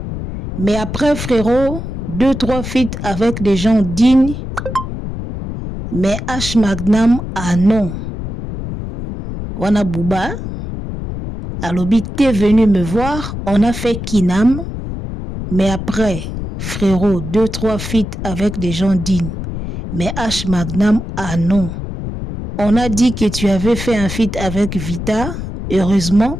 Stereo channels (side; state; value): left; noise; rumble, 7 dB below the sound